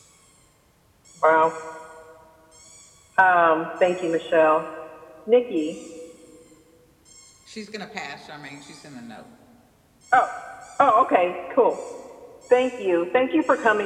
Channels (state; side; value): identical; both; correlation 1.00